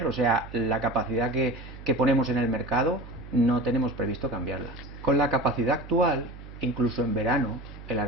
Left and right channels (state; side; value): noise; right; hum, 15 dB below the sound